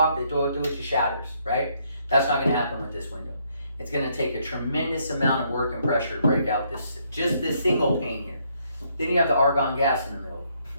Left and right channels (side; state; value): both; inverted; correlation -0.71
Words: they throw it through it, it shatters, right? That's not going to happen with this window. It's going to take a tremendous amount of work and pressure to break out just this single pane here. Then you have the argon gas in the middle.